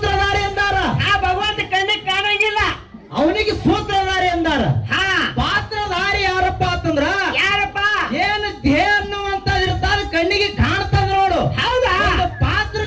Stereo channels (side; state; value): both; identical; correlation 1.00